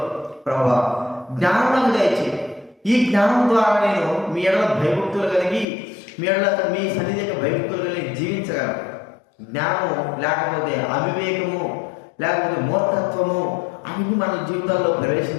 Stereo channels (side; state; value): right; drops out; at 5.7 s